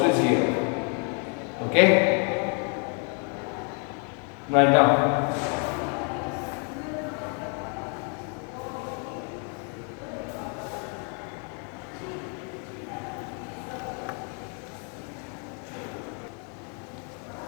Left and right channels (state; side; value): quieter; right; 39.3 dB